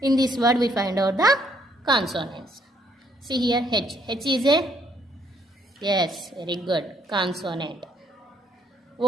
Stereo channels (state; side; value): normal; both; correlation 0.68